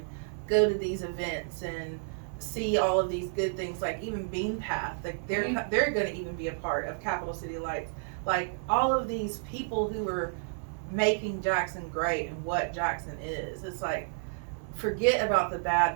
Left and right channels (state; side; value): silent; left; 57 dB below the other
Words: go to these events and see all of these good things, like even Bean Path, like they're going to even be a part of Capital City Lights. Like all of these people who are making Jackson great and what Jackson is. It's like, forget about the bad.